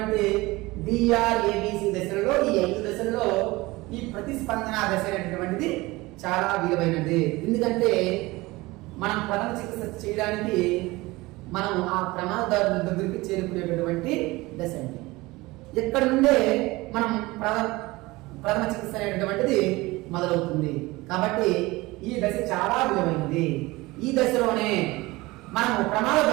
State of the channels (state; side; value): quieter; left; 21.2 dB